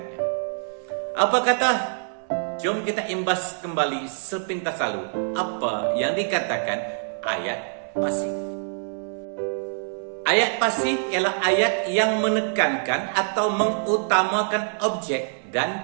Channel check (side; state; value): left; silent; digital silence